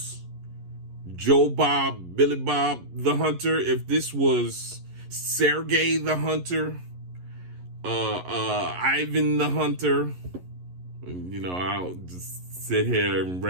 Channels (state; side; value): late; left; 11 ms